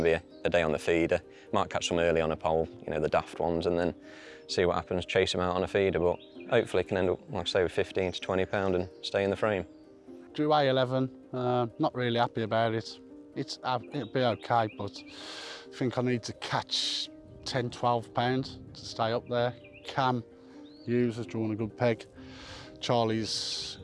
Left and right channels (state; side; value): identical; both; correlation 1.00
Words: to be a day on the feeder. Might catch some early on a pole, you know, the daft ones, and then see what happens, chase them out on a feeder, but hopefully can end up, like I say, with 15 to 20 pound and stay in the frame. Drew A11, not really happy about it. It'll be okay, but I think I need to catch 10, 12 pounds to stay up there. Cam Hughes has drawn a good peg. Charlie's